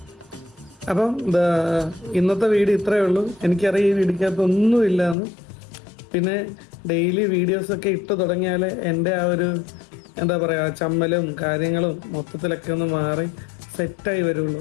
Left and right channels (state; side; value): drops out; right; at 5.2 s